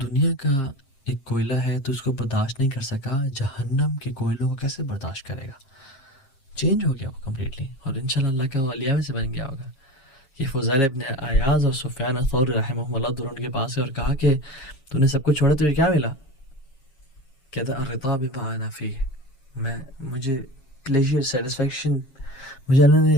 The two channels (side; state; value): right; late; 7.4 ms